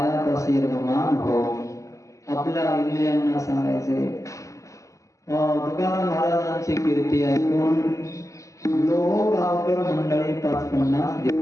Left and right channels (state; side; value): late; right; 0.15 ms